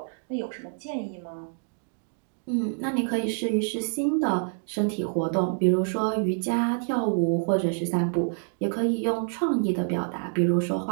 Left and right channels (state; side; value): silent; left; 60 dB below the other